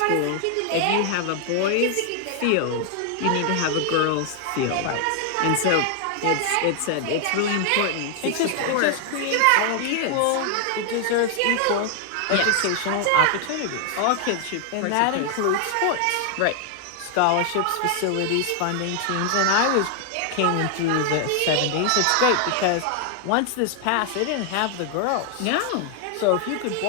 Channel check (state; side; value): different; both; correlation 0.00